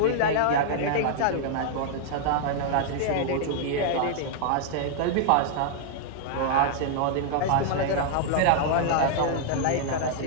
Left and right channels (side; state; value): both; different; correlation -0.01